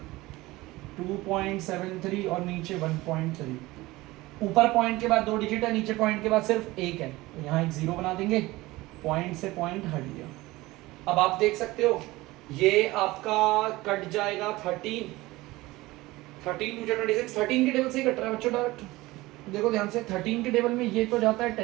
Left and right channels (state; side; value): quieter; left; 19.7 dB